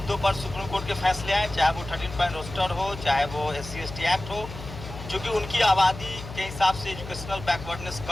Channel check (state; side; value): noise; left; hum, 12 dB below the sound